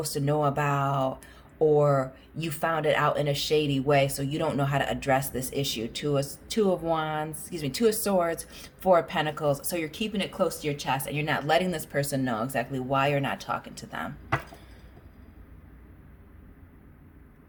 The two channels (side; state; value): both; identical; correlation 1.00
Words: to know about, or you found it out in a shady way, so you don't know how to address this issue. Two of wands, excuse me, two of swords, four of pentacles. So you're keeping it close to your chest, and you're not letting this person know exactly why you're not talking to them.